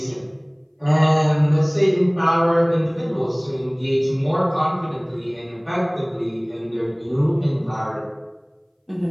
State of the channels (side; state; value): both; identical; correlation 1.00